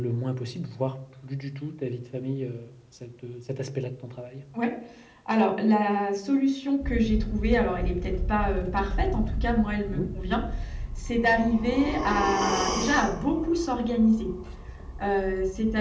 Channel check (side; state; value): both; identical; correlation 1.00